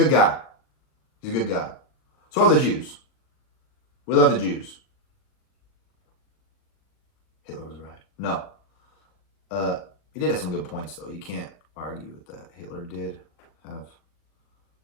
guy. He's a good guy. So are the Jews. We love the Jews. Hitler was right. No. He did have some good points, though. You can't argue with that. Hitler did have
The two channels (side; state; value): right; late; 39 ms